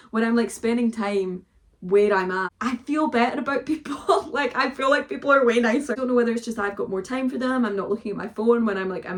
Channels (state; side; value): identical; both; correlation 1.00